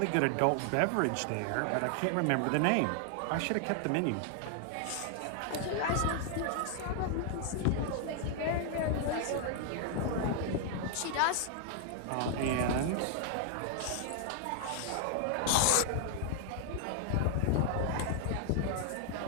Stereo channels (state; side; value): different; both; correlation 0.00